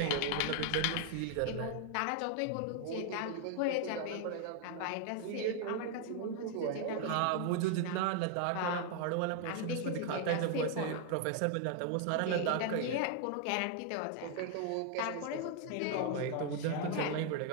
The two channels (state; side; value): different; both; correlation 0.00